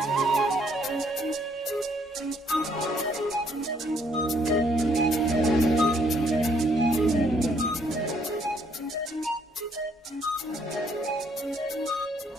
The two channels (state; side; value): normal; both; correlation 0.67